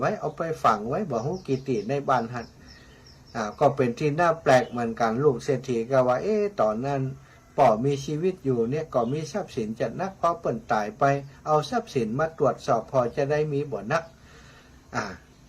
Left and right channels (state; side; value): identical; both; correlation 1.00